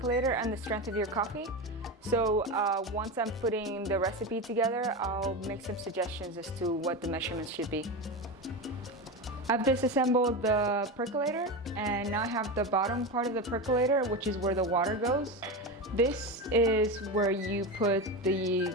and the strength of your coffee. So once I'm putting the recipe together, I'll make some suggestions as to what the measurements should be. I've disassembled the percolator, and now I have the bottom part of the percolator, which is where the water goes. This is where you put the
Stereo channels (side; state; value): both; normal; correlation 0.20